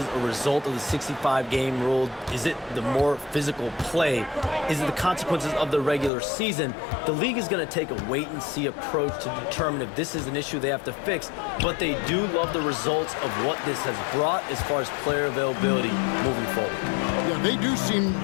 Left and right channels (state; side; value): drops out; right; at 6.1 s